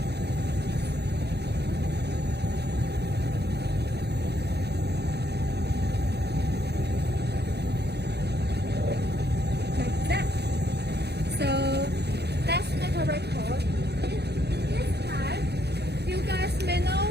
like that. So let's make a record. In this time, you guys may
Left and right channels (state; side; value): late; left; 0.48 ms